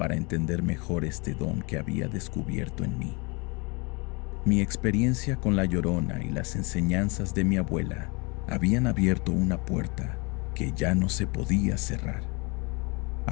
entender mejor este don que había descubierto en mí. Mi experiencia con la Llorona y las enseñanzas de mi abuela habían abierto una puerta que ya no se podía cerrar.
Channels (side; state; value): right; quieter; 29.2 dB